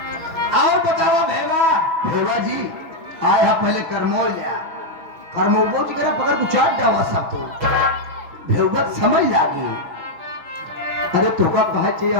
और बताओ भेवा। भेवा जी आए हा पहले करमोल जा करमोल जी करा पकड़ को चाट डावा सब तो भेवत समझ लागी। अरे तोका कहे चाहिए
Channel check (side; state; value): left; late; 6.2 ms